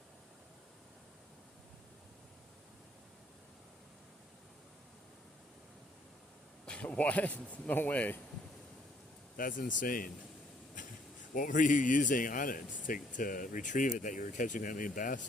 What? No way. That's insane. What were you using on it to retrieve it that you were catching that many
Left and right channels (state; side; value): normal; both; correlation 0.65